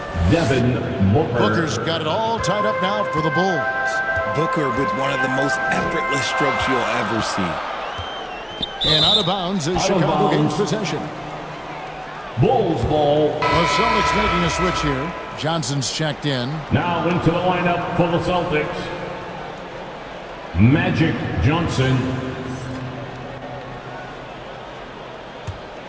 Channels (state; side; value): identical; both; correlation 1.00